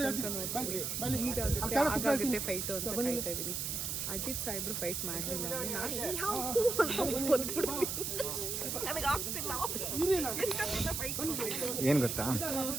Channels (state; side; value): noise; right; hiss, 2 dB below the sound